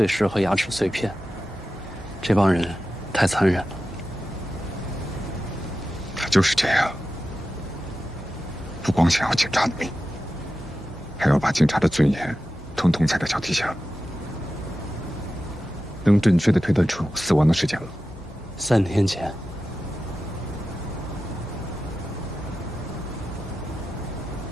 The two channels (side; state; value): both; normal; correlation 0.92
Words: 尸和牙齿碎片。这帮人太残忍了。他就是这样，不光想要警察的命，还要把警察的尊严统统踩在脚底下。能准确地推断出死亡的时间吗？3天前。